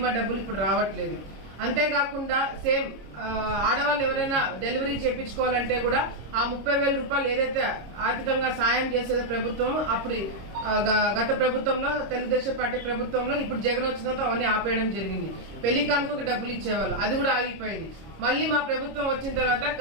డబ్బులు ఇప్పుడు రావట్లేదు. అంతేకాకుండా సేమ్ ఆడవాళ్ళు ఎవరైనా డెలివరీ చేయించుకోవాలంటే కూడా ఆ 30,000 రూపాయలు ఏదైతే ఆర్థికంగా సాయం చేసేది ప్రభుత్వం, అప్పుడు గత ప్రభుత్వంలో తెలుగుదేశం పార్టీ ప్రభుత్వంలో, ఇప్పుడు జగన్ వచ్చిన తర్వాత అవన్నీ ఆపేయడం జరిగింది. పెళ్లి కానుకకు డబ్బులు ఇచ్చేవాళ్ళు, అది కూడా ఆగిపోయింది. మళ్ళీ మా ప్రభుత్వం వచ్చిన తర్వాత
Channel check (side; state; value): left; late; 26 ms